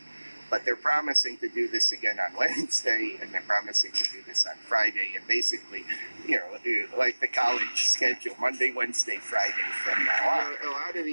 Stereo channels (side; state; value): both; inverted; correlation -1.00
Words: But they're promising to do this again on Wednesday, and they're promising to do this on Friday, and basically, like the college schedule, Monday, Wednesday, Friday from now on. A lot of